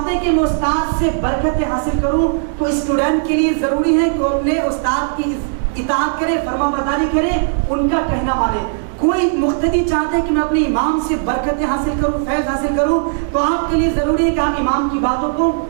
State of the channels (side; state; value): left; silent; digital silence